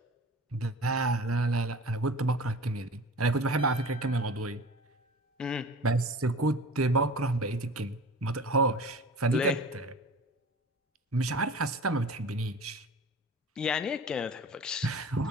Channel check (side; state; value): both; normal; correlation 0.39